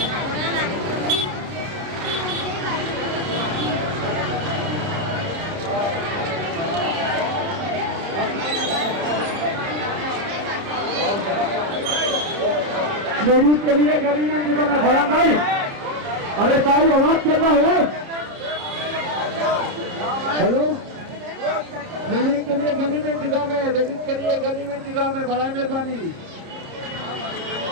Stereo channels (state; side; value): late; left; 30 ms